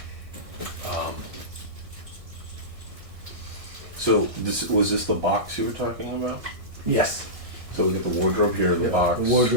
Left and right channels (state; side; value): late; left; 1.6 ms